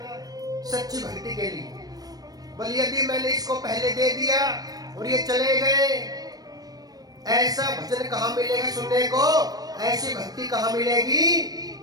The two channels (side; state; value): left; late; 0.19 ms